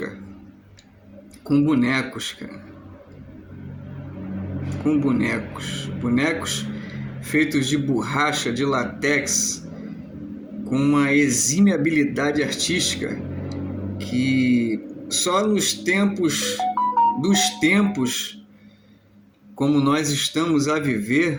com bonecos, cara. Com bonecos. Bonecos feitos de borracha, de látex, com uma exímia habilidade artística que só nos tempos dos tempos como nós estamos a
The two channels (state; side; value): identical; both; correlation 1.00